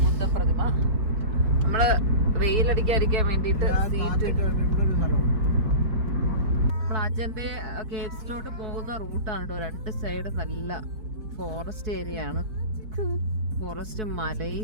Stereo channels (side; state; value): left; late; 4.6 ms